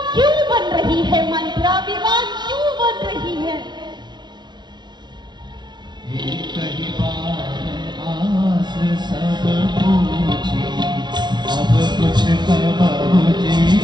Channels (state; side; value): late; left; 0.21 ms